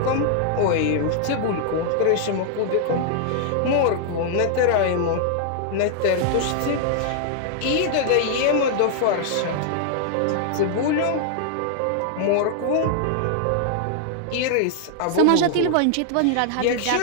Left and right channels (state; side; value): different; both; correlation -0.01